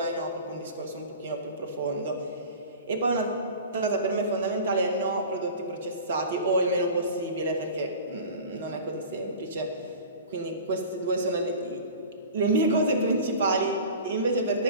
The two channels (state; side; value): inverted; both; correlation -0.38